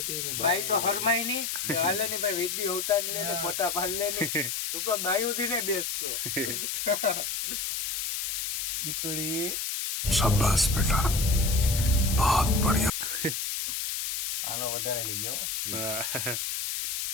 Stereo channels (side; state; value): left; noise; hiss, 2 dB below the sound